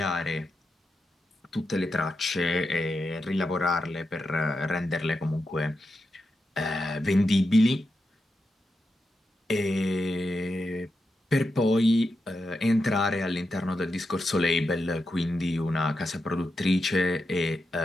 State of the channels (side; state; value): both; normal; correlation 0.87